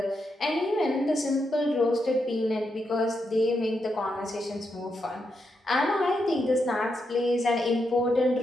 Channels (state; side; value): normal; both; correlation 0.83